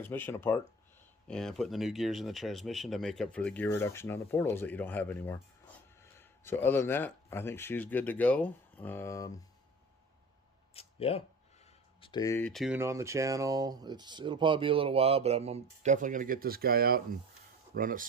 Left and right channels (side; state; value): both; normal; correlation 0.39